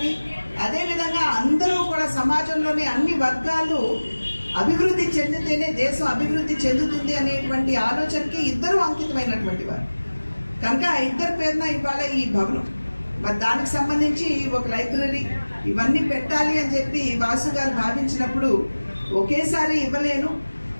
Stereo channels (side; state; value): both; inverted; correlation -1.00